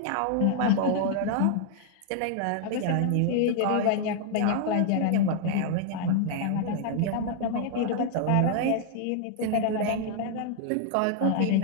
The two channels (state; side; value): different; both; correlation -0.01